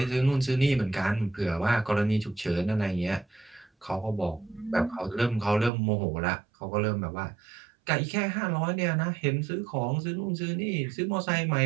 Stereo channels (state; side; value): drops out; left; at 5.7 s